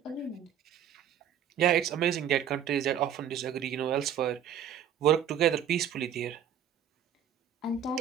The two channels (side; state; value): left; quieter; 9.1 dB